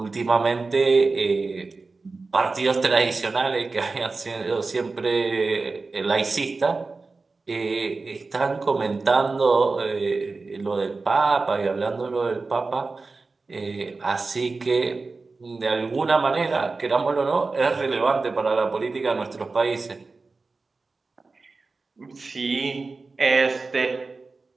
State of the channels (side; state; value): left; quieter; 3.9 dB